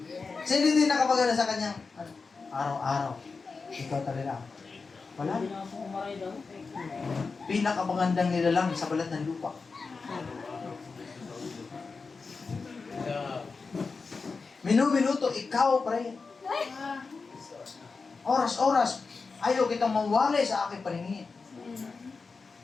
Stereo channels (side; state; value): right; quieter; 4.5 dB